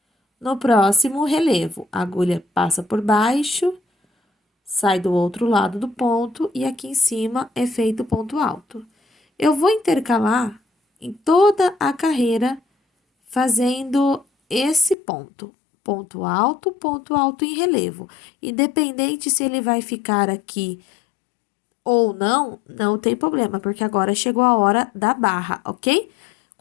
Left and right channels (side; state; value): right; drops out; at 15.0 s